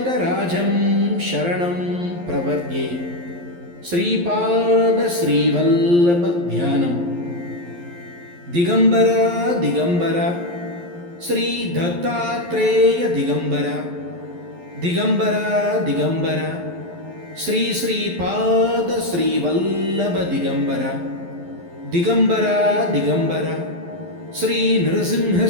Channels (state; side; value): late; left; 11 ms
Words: शरणं प्रपद्ये। श्रीपाद श्रीवल्लभ ध्यानम्। दिगंबरा दिगंबरा श्री दत्तात्रेय दिगंबरा दिगंबरा दिगंबरा श्री श्रीपाद श्रीवल्लभ दिगंबरा दिगंबरा दिगंबरा श्री नृसिंह